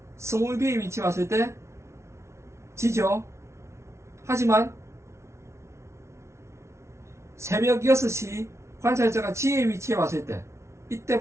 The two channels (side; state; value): left; late; 0.13 ms